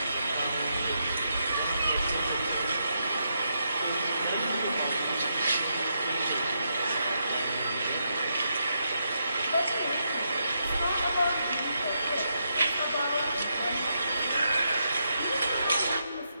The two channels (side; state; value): both; inverted; correlation -0.81